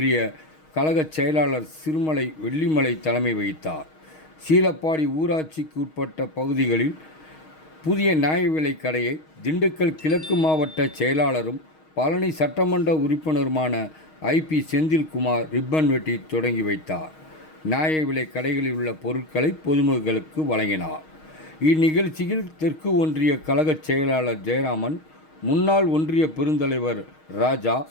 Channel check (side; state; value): right; late; 6.4 ms